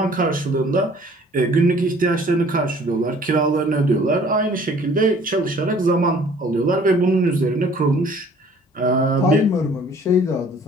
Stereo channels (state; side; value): normal; both; correlation 0.54